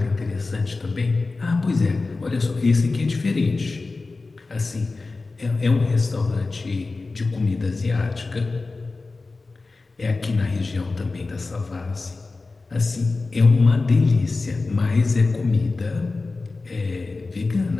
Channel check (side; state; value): right; quieter; 3.7 dB